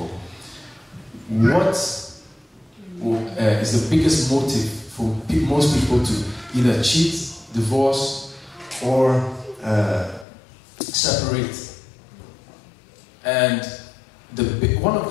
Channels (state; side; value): drops out; right; at 10.2 s